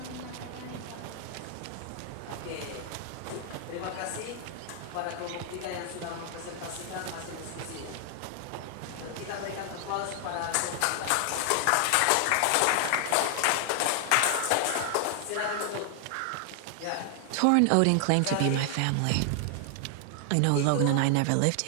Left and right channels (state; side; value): different; both; correlation 0.00